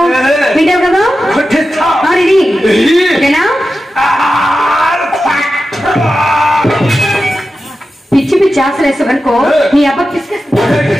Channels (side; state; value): both; normal; correlation 0.92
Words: వింటావు కదా కొట్టిస్తా. ఓకేనా? పిచ్చి పిచ్చి ఆశలు వేసావనుకో నీ అబ్బ